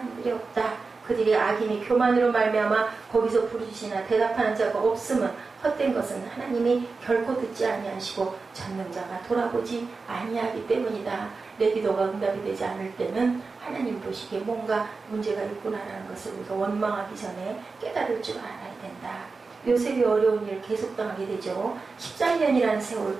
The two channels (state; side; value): quieter; left; 4.2 dB